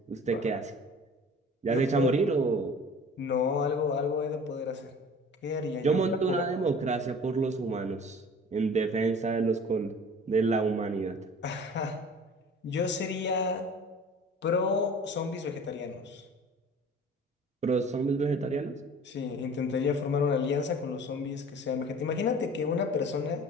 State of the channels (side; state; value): both; normal; correlation 0.44